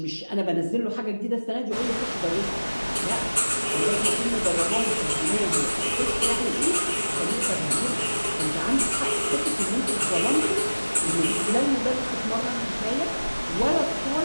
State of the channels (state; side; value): inverted; both; correlation -1.00